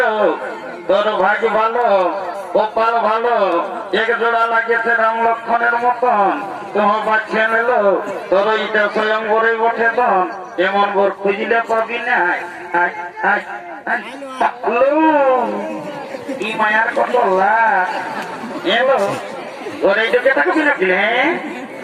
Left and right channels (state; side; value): identical; both; correlation 1.00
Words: তোর ভাগ্য ভালো কপাল ভালো এক জোড়া লাগিয়েছে রাম লক্ষণের মতন তোমার বাচ্চা নিল তোর এটা স্বয়ং বরে বসে তন এমন বর খুঁজিলে পাবি না কি মায়ার কত লাখ এলো তোর এইটাকে তাকে বিনাকিলে